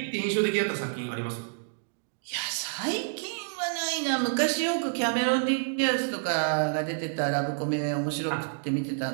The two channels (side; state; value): left; silent; digital silence